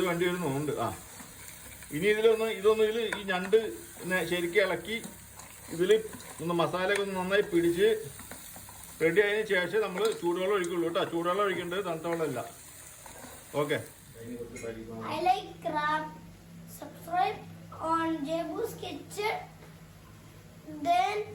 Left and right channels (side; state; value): both; identical; correlation 1.00